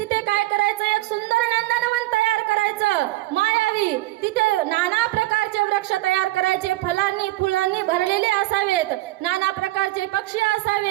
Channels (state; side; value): quieter; left; 18.0 dB